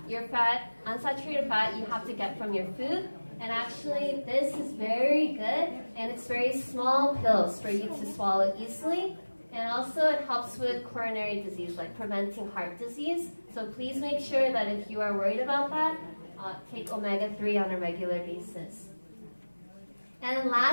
Unsaturated fat you have to get from your food. And actually, this is very good, and it's very small pills for you to swallow easily. And also, it helps with coronary disease, like preventing heart disease. So please make sure that if you are worried about that, take omega-3 on a regular basis. And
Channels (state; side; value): inverted; both; correlation -1.00